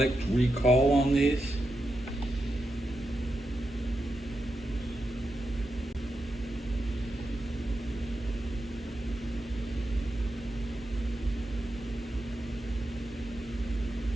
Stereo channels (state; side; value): normal; both; correlation 0.87